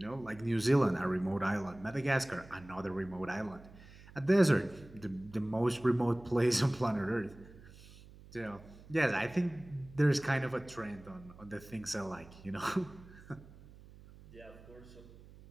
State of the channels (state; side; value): noise; right; hum, 20 dB below the sound